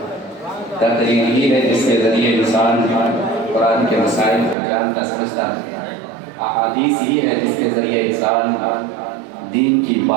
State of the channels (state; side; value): drops out; left; at 4.5 s